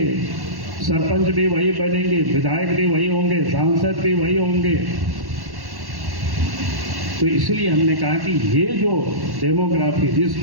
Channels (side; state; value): left; late; 1.1 ms